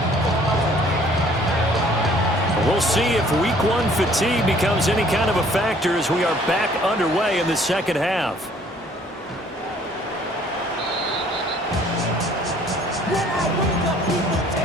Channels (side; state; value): both; normal; correlation 0.58